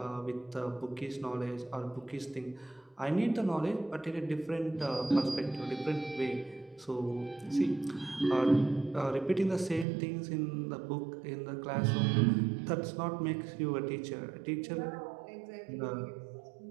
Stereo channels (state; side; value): drops out; left; at 9.9 s